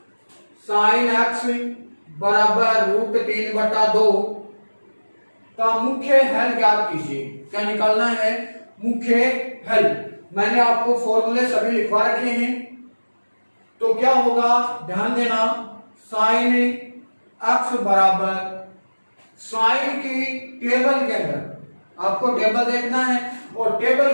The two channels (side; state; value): both; inverted; correlation -1.00